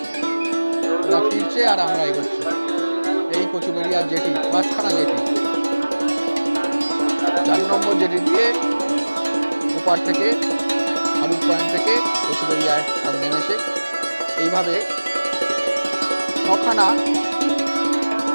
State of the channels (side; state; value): both; inverted; correlation -1.00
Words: ওরা ফিরছে আর আমরা এগোচ্ছি। এই কচুবেড়িয়ার জেটি, 5খানা জেটি, 4 নম্বর জেটি দিয়ে ওপার থেকে হারুট পয়েন্ট থেকে কচুবেড়িয়ায় সব নেমেছে। এইভাবে 7খানা